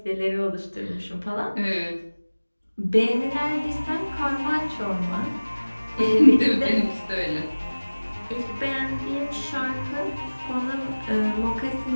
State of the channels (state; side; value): inverted; both; correlation -1.00